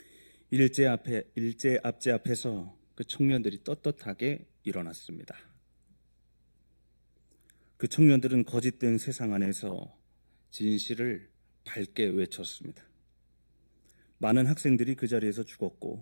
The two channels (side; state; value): both; inverted; correlation -1.00